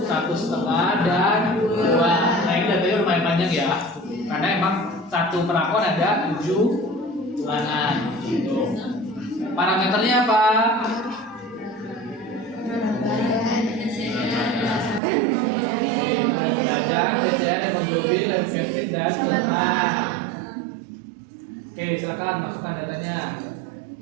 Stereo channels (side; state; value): left; drops out; at 15.0 s